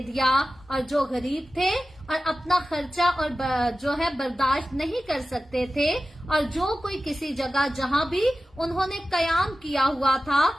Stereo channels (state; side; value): normal; both; correlation 0.95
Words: दिया। और जो गरीब थे और अपना खर्चा और जो है बर्दाश्त नहीं कर सकते थे, और जो कोई किसी जगह जहां भी उन्होंने कयाम किया हुआ था